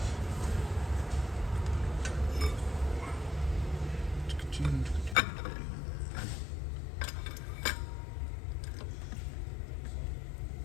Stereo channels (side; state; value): right; drops out; at 5.2 s